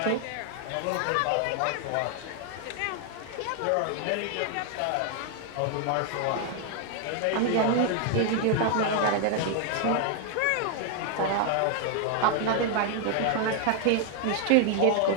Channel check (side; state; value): both; different; correlation 0.00